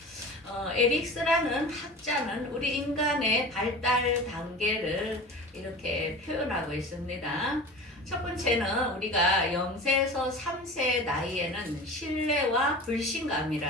에릭스라는 학자는 우리 인간의 발달 단계를 이렇게 표현하고 있습니다. 첫 번째는 우리가 0세에서 3세 나이에는 신뢰와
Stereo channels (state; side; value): normal; both; correlation 0.35